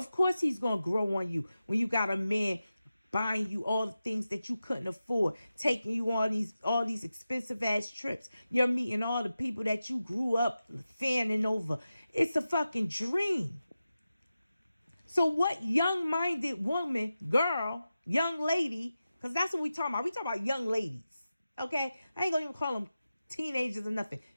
course he's gonna grow on you when you got a man buying you all the things that you couldn't afford, taking you on all these expensive ass trips. You're meeting all the people that you grew up fanning over. It's a fucking dream. So what young-minded woman, girl, young lady, because that's what we talking about. We talking about young ladies, okay? I ain't gonna even call them teenagers or nothing.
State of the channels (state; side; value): inverted; both; correlation -0.93